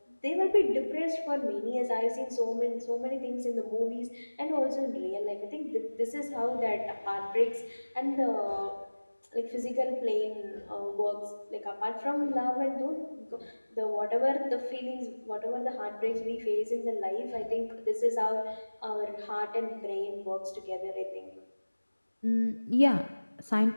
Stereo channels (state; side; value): inverted; both; correlation -1.00